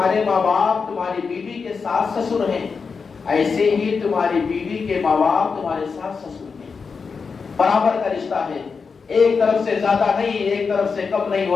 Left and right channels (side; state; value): right; quieter; 5.2 dB